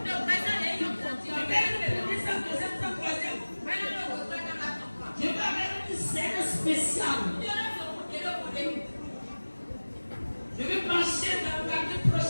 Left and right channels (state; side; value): inverted; both; correlation -1.00